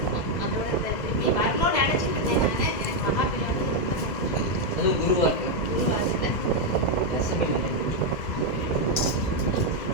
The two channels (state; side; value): late; right; 2.0 ms